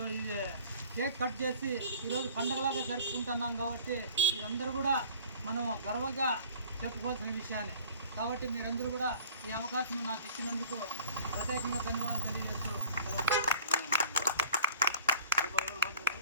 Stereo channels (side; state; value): both; inverted; correlation -0.47